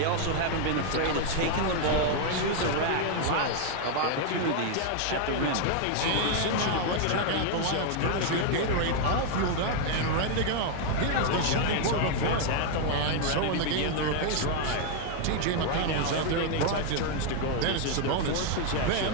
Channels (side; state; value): both; different; correlation 0.00